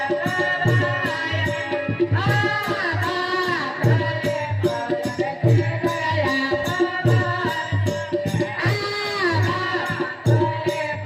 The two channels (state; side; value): identical; both; correlation 1.00